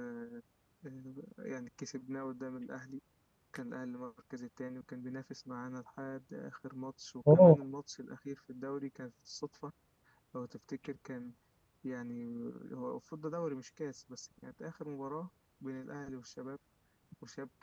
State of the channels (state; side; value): identical; both; correlation 1.00